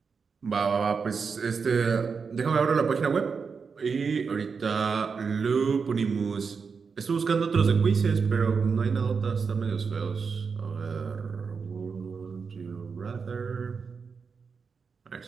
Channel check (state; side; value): quieter; left; 5.4 dB